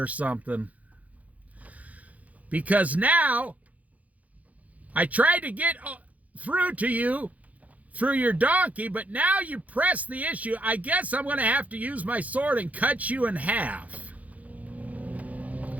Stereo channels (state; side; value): late; left; 0.072 ms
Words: something. Because now I tried to get through to you through your donkey, but now you press the issue. I guess I'm going to have to use my sword and cut you in half.